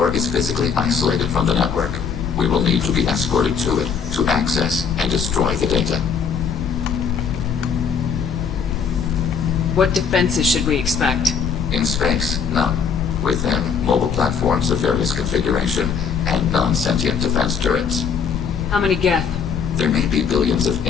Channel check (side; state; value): right; quieter; 6.5 dB